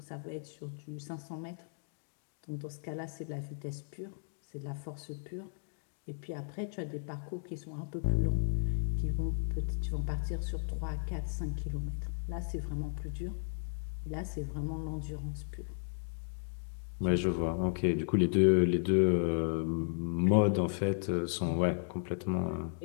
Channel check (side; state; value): right; silent; digital silence